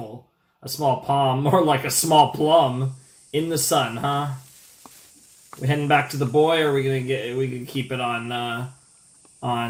A small palm, more like a small plum in the sun, huh? We heading back to the boy, or are we gonna keep it on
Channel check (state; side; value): identical; both; correlation 1.00